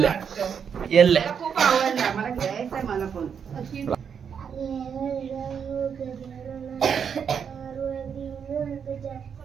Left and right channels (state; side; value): quieter; left; 7.2 dB